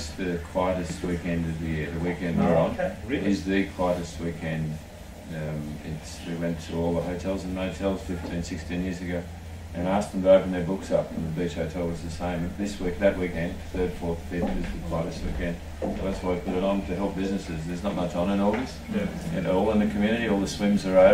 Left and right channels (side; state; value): both; identical; correlation 1.00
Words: the quietest weekend of the year. The weekend we're on Really? is the quietest weekend. We went to all the hotels and motels 15, 16 years ago and asked them to open their books up, and the beach hotel was the same. That weekend, 3rd, 4th, 5th, is the quietest weekend. So that's why we put it on, to help businesses. There's not much on in August. And all in the community, all the swims are